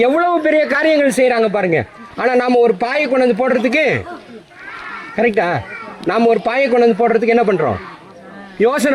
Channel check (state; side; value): identical; both; correlation 1.00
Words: எவ்வளவு பெரிய காரியங்கள் செய்கிறாங்க பாருங்க. ஆனால் நாம் ஒரு பாயை கொண்டு வந்து போடுறதுக்கு, கரெக்டா, நாம் ஒரு பாயை கொண்டு வந்து போடுறதுக்கு என்ன பண்ணுறோம்?